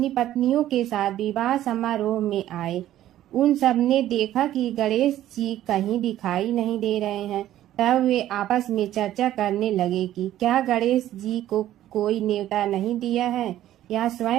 पत्नियों के साथ विवाह समारोह में आए। उन सब ने देखा कि गणेश जी कहीं दिखाई नहीं दे रहे हैं। तब वे आपस में चर्चा करने लगे कि क्या गणेश जी को कोई न्योता नहीं दिया है या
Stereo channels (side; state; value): left; quieter; 13.1 dB